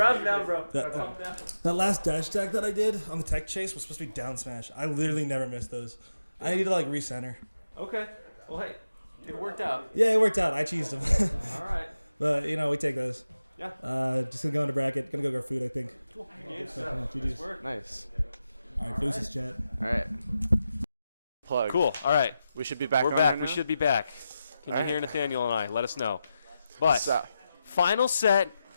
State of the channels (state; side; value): inverted; both; correlation -0.90